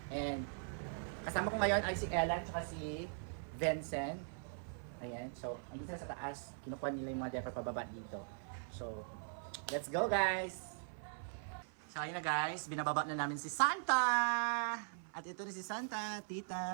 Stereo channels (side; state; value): left; silent; 51 dB below the other